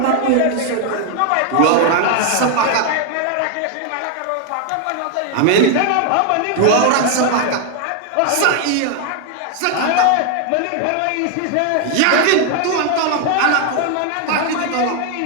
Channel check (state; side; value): different; both; correlation 0.00